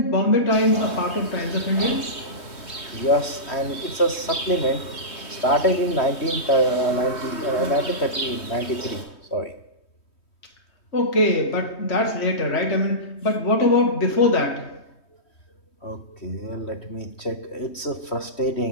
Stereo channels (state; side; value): late; right; 3.2 ms